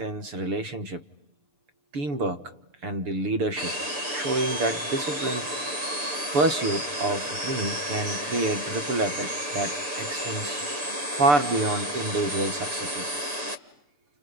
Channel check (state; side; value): late; left; 6.9 ms